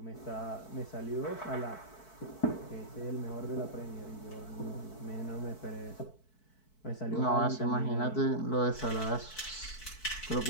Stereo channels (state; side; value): late; right; 4.6 ms